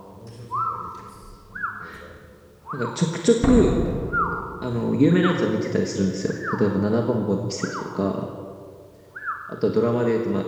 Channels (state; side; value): identical; both; correlation 1.00